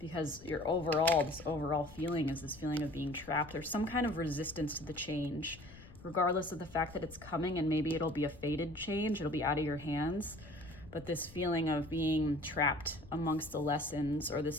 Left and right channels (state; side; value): noise; left; rumble, 19 dB below the sound